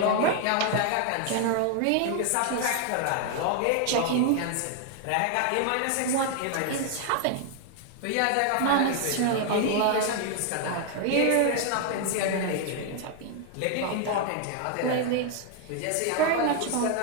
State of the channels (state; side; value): different; both; correlation 0.00